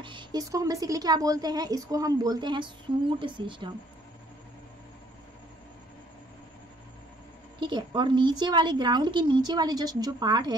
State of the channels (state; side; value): normal; both; correlation 0.62